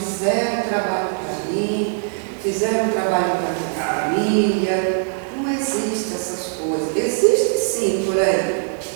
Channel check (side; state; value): left; silent; digital silence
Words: trabalho para mim, fizeram trabalho para minha família. Não existe essas coisas. Existe sim por aí,